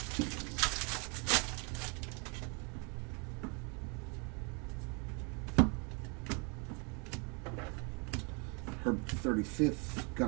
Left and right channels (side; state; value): left; quieter; 33.7 dB